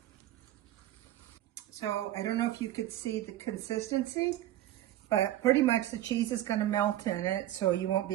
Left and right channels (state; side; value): quieter; left; 13.7 dB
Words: So I don't know if you could see the consistency, but pretty much the cheese is going to melt in it, so you won't